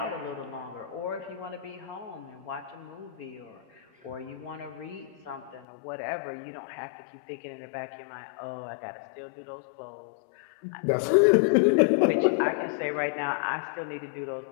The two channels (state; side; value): drops out; right; at 5.7 s